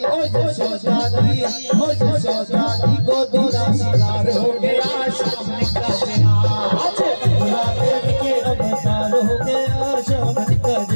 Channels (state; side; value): inverted; both; correlation -1.00